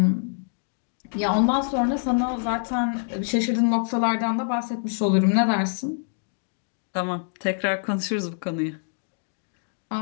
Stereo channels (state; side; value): silent; right; digital silence